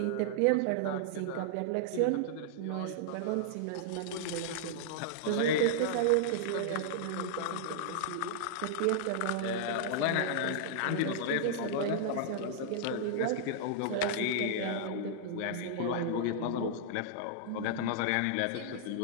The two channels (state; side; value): different; both; correlation -0.01